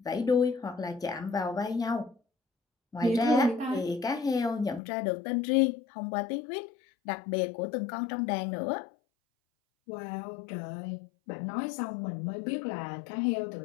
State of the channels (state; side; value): drops out; right; at 4.8 s